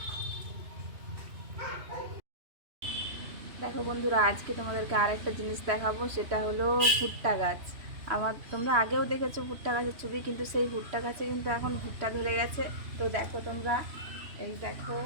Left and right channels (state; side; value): late; left; 3.0 ms